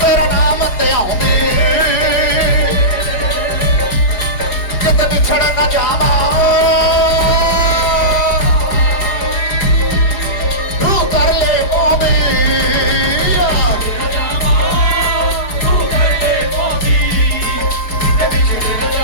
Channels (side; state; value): right; late; 4.9 ms